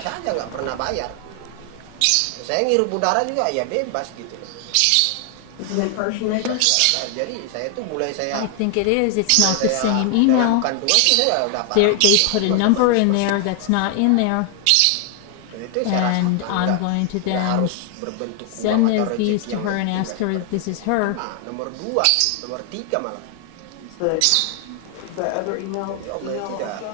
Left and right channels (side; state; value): both; different; correlation 0.00